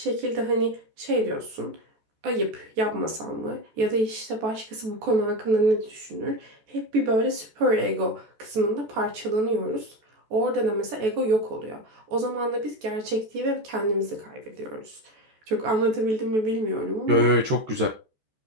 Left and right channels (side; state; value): left; late; 14 ms